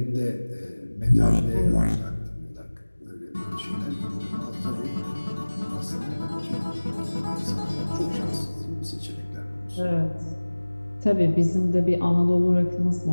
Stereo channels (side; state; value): both; inverted; correlation -1.00